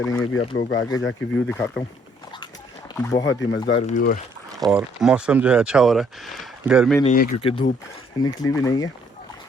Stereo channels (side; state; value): both; normal; correlation 0.65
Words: भी आप लोगों को आगे जाके व्यू दिखाता हूँ, बहुत ही मज़ेदार व्यू है और मौसम जो है अच्छा हो रहा है। गर्मी नहीं है क्योंकि धूप निकली भी नहीं है,